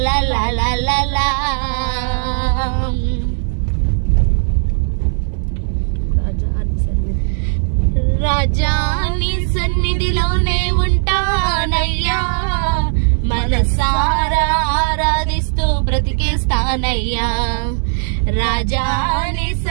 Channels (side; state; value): left; silent; digital silence